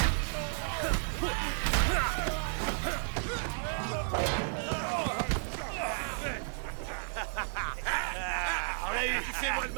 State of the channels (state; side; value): silent; left; digital silence